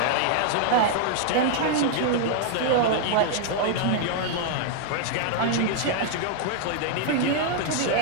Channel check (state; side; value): different; both; correlation 0.00